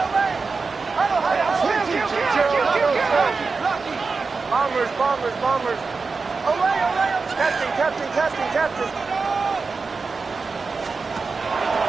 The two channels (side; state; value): left; quieter; 4.5 dB